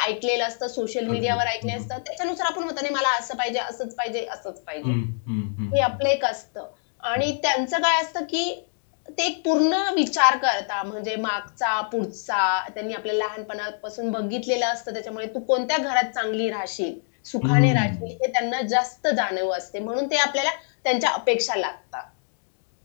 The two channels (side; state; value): right; silent; 62 dB below the other